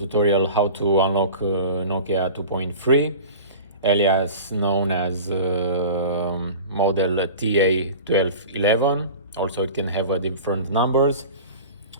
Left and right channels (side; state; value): both; inverted; correlation -0.37